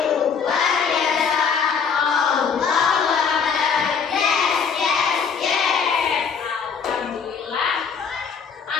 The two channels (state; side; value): quieter; right; 6.2 dB